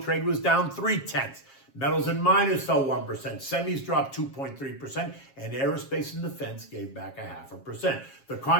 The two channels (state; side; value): late; right; 7.4 ms